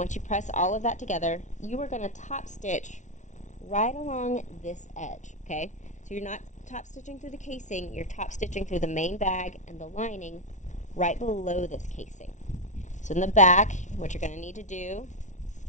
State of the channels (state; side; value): late; right; 0.35 ms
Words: you press all of that together, you are going to top stitch right along this edge. Okay, so you're not top stitching through the casing, you're top stitching through the main bag and the lining right below this casing. So in the back, what you're going to need to do,